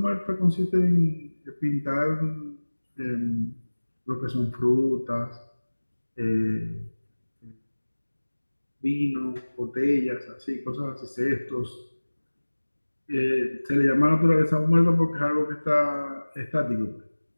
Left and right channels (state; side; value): inverted; both; correlation -1.00